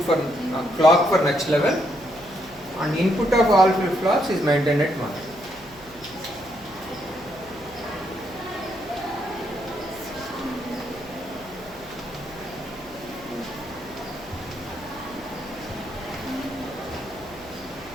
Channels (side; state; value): right; noise; hum, 22 dB below the sound